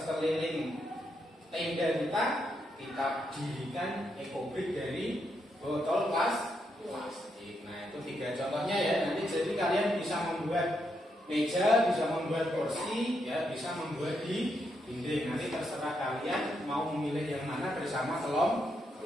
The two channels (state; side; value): normal; both; correlation 0.80